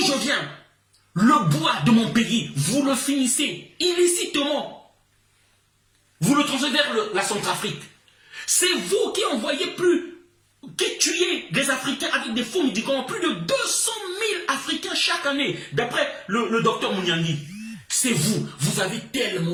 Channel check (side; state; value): both; identical; correlation 1.00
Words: viens, le bois de mon pays, vous le finissez illicitement. Vous le transférez vers la Centrafrique. C'est vous qui envoyez qui tuez des Africains avec des faux médicaments. Plus de 200 000 Africains chaque année, d'après le docteur Mouniangui. C'est vous. Vous avez